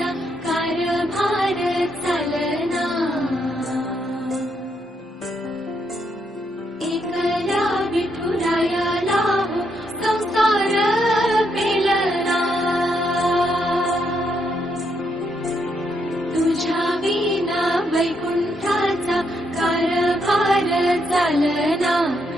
कारभार चालना, एकल्या विठुरायाला हो संसार पेलना, तुझ्या विना वैकुंठाचा कारभार चालना,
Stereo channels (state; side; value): normal; both; correlation 0.77